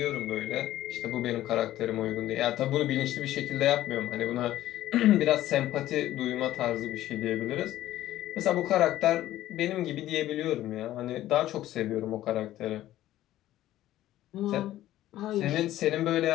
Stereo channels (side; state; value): right; quieter; 14.1 dB